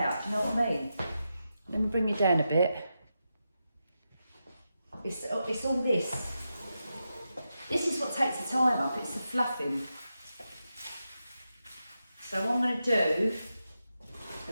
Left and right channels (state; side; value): inverted; both; correlation -0.88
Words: do you know what I mean? Let me bring you down a bit. It's all this. This is what takes the time up, it's the fluffing. So what I'm going to do,